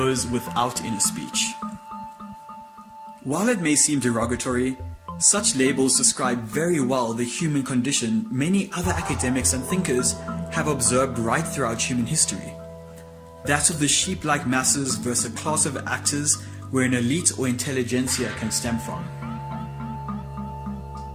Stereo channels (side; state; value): both; identical; correlation 1.00